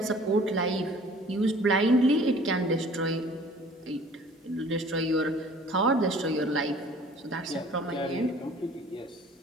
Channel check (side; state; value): both; normal; correlation 0.51